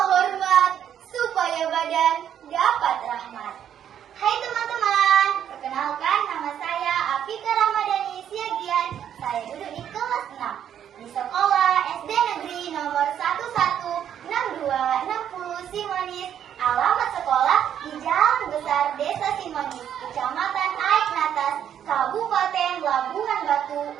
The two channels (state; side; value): quieter; left; 9.6 dB